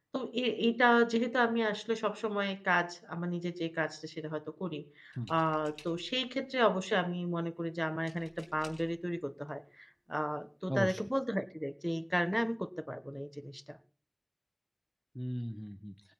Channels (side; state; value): both; identical; correlation 1.00